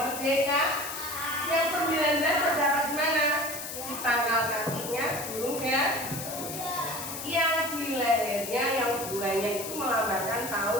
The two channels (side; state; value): left; noise; hiss, 7 dB below the sound